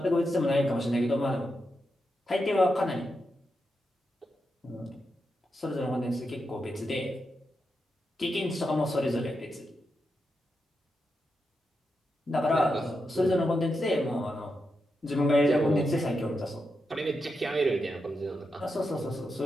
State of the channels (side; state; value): both; normal; correlation 0.86